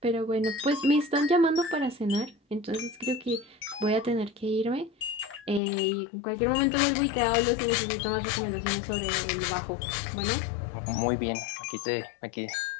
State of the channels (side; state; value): right; drops out; at 5.6 s